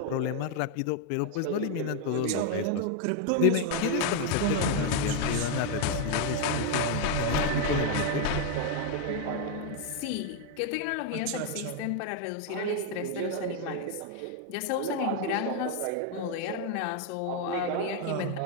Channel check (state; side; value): different; both; correlation 0.01